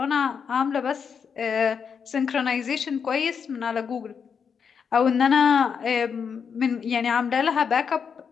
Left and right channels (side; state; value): right; quieter; 6.6 dB